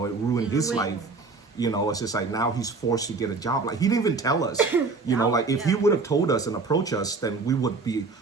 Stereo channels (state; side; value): quieter; left; 4.1 dB